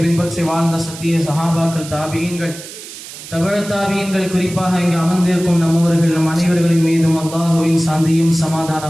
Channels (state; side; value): noise; right; hiss, 14 dB below the sound